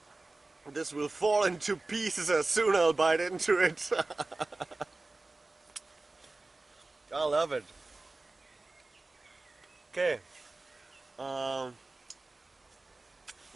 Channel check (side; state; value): left; quieter; 3.2 dB